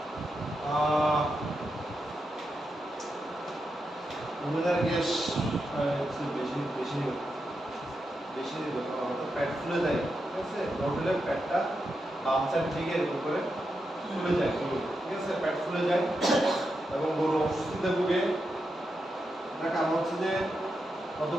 উমেনের গ্যাস বেশি বেশি বেশি প্যাড ফুলে যায়, ঠিক আছে? লোডের প্যাডটা বাম সাইড দিকে এরকম করে ফুলে যায়, ঠিক আছে? প্যাড ফুলে যায় এবং গরু অসুস্থতে ভুগে। তার কারণ হচ্ছে যে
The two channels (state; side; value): normal; both; correlation 0.86